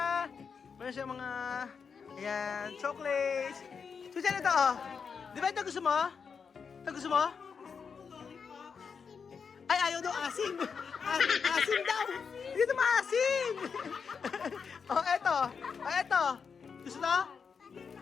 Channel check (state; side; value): quieter; right; 6.0 dB